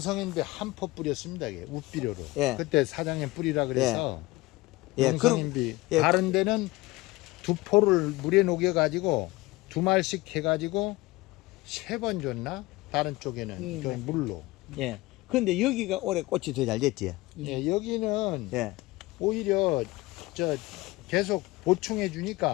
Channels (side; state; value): right; quieter; 20.7 dB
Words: 한 포 뿌렸습니다. 이게 우비료로. 예. 그때 사장님 뿌리라 그래서 예. 용성인비 예. 다른 데는 2포를 물에 녹여 가지고 2말씩 해 가지고 3번 줬나? 다른 쪽에는 그 물로. 예. 근데 여기가 올해 꽃이 더 잘 됐지. 예, 여기는 예. 오히려 저 계속 보충해